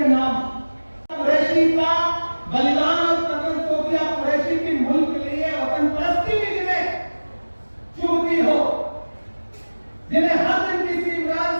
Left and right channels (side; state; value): both; inverted; correlation -1.00